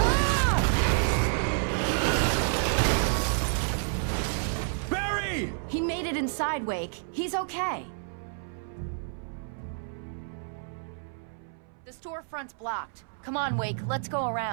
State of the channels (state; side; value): silent; left; 58 dB below the other